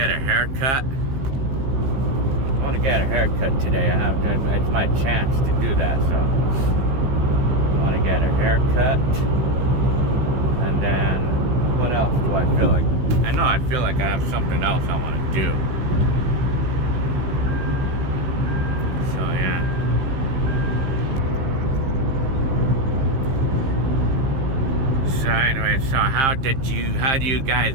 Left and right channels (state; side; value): late; left; 15 ms